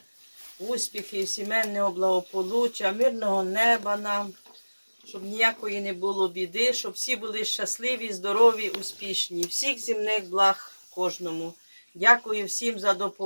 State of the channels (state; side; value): inverted; both; correlation -1.00